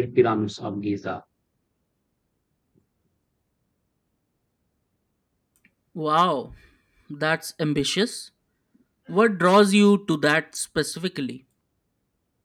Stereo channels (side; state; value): both; identical; correlation 1.00